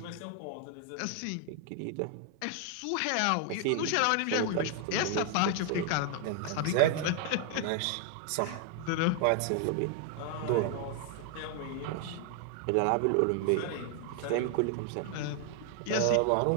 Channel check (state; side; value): different; both; correlation 0.00